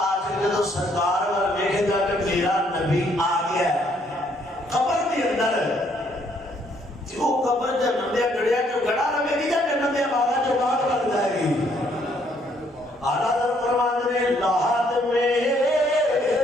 جدو سرکار وال ویکھے گا کہ میرا نبی آ گیا ہے قبر کے اندر جو قبر جنم دیا گڑیا جو گڑا رہے گی یا جنم دیا باغا جو باغ لگ جائے گی آلہ در فرمانے نے لاحت میں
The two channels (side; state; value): both; normal; correlation 0.68